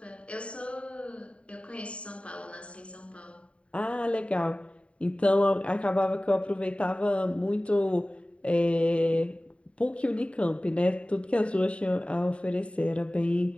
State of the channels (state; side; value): late; right; 0.061 ms